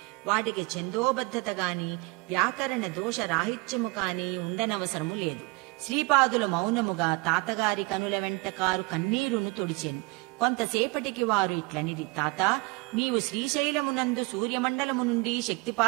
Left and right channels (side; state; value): left; quieter; 26.2 dB